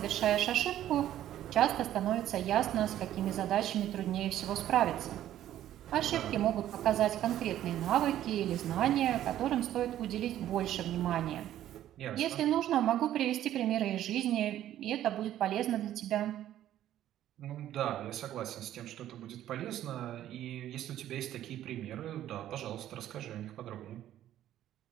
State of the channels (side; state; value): left; quieter; 12.3 dB